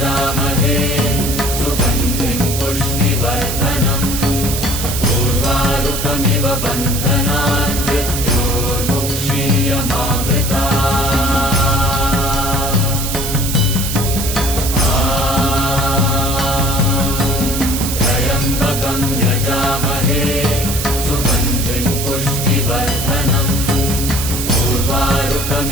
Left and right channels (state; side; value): noise; right; hiss, 4 dB below the sound